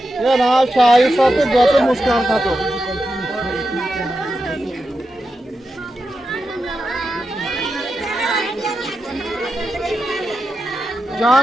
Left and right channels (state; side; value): normal; both; correlation 0.89